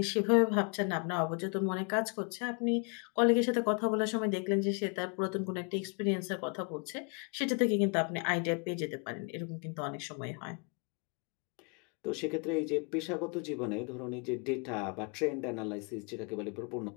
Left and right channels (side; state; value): right; quieter; 36.3 dB